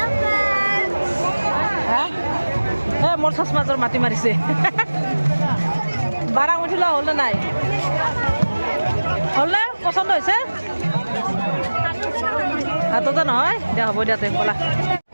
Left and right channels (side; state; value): both; inverted; correlation -1.00